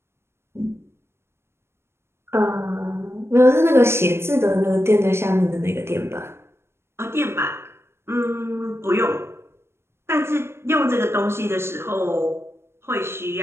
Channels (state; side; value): late; left; 0.12 ms